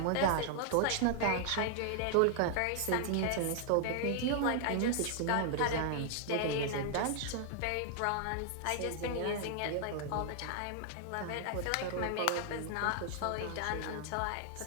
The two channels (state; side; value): different; both; correlation 0.00